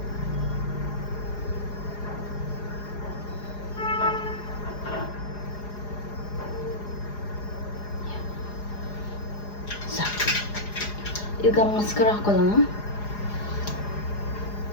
ಈಗ ಮಸ್ಕರ ಹಾಕೊಳ್ಳೋಣ.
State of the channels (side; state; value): right; late; 4.9 ms